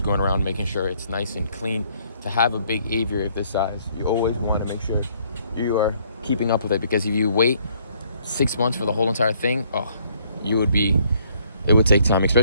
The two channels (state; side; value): inverted; both; correlation -0.65